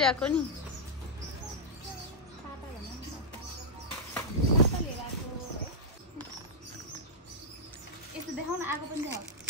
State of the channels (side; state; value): both; normal; correlation -0.06